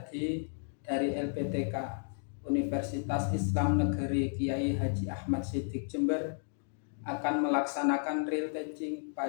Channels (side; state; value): right; silent; digital silence